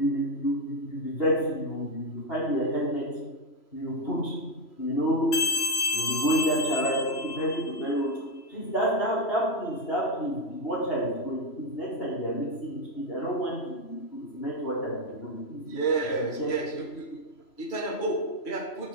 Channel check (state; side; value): late; right; 3.0 ms